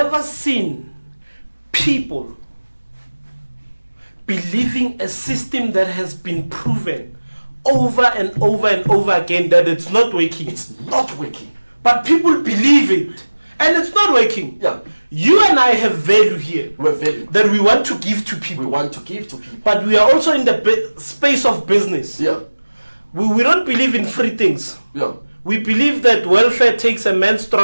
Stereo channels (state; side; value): inverted; both; correlation -1.00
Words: seen people believing a system that has been proven over and over and over again that it's not working. It's not working. But people believe it, and it's not working. You and I have value here that we want to give to people. But we are also in the space of business. We don't believe in free things. We believe that welfare takes a man's